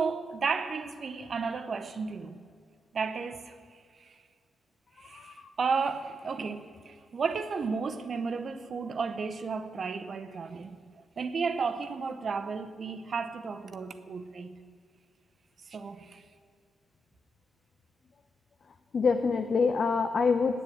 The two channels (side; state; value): both; normal; correlation 0.82